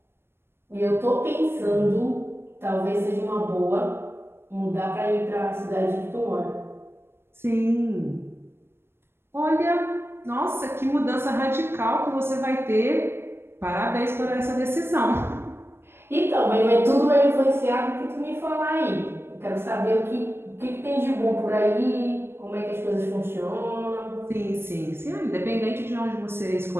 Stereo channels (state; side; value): late; left; 0.12 ms